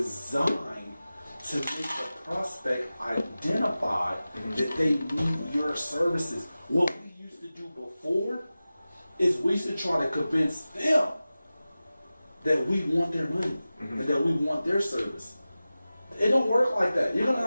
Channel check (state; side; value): inverted; both; correlation -0.96